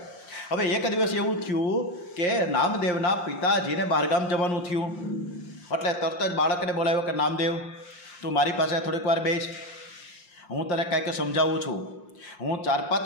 હવે એક દિવસ એવું થયું કે નામદેવના પિતાજીને બહારગામ જવાનું થયું, એટલે તરત જ બાળકને બોલાવ્યો કે નામદેવ તું મારી પાસે થોડીક વાર બેસ, હું તને કાંઈક સમજાવું છું। હું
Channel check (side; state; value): right; late; 5.7 ms